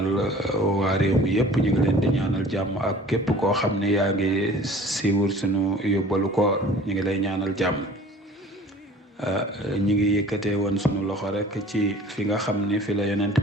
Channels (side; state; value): both; normal; correlation 0.47